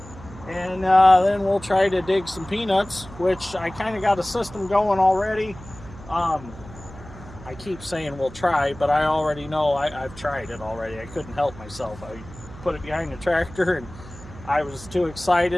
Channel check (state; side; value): noise; right; hum, 17 dB below the sound